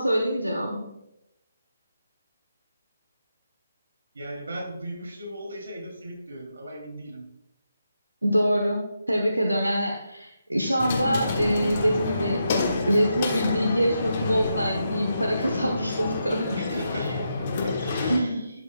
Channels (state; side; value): inverted; both; correlation -0.84